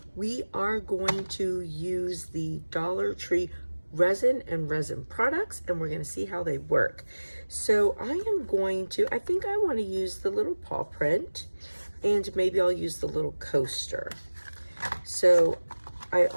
we are going to use the Dollar Tree resin and resin products, and we're going to see how they work. So I think I want to use the little paw print, and maybe I'll use the little coaster. So I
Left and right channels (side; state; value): both; inverted; correlation -1.00